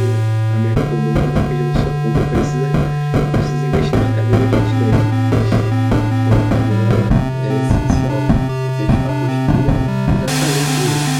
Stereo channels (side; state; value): both; identical; correlation 1.00